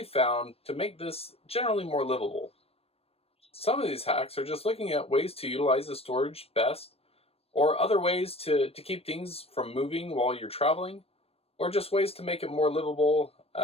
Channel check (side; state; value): right; late; 0.28 ms